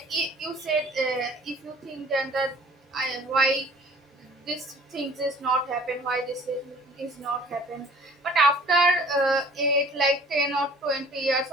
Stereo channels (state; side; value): normal; both; correlation 0.51